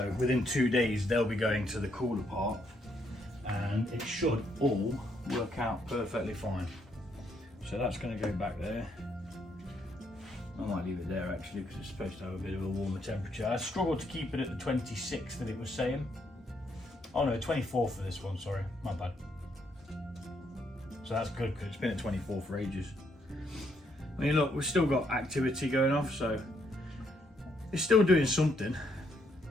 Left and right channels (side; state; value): both; normal; correlation 0.73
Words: within 2 days they'll be going to the cooler part and it should all work out perfectly fine. So that's going to go back there. I might leave it there actually because it's supposed to have a bit of a warmer temperature. I struggled to keep it at the 26 that it was saying. Oh no, 24 for this one, sorry, my bad. So that's good because it's been at 24 for ages. I mean look, we've still got activity going off, so it's still doing something.